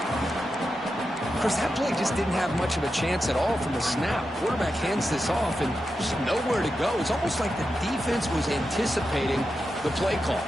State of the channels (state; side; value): normal; both; correlation 0.89